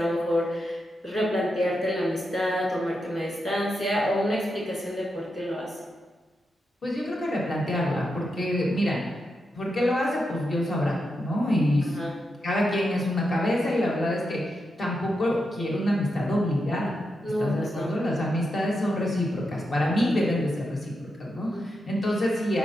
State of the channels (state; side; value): normal; both; correlation 0.86